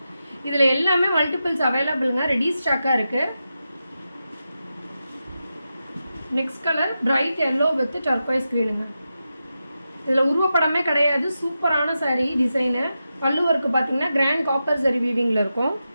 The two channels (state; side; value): inverted; both; correlation -0.89